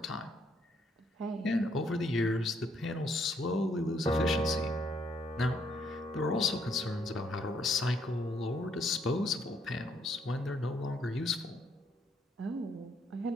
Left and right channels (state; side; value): normal; both; correlation 0.71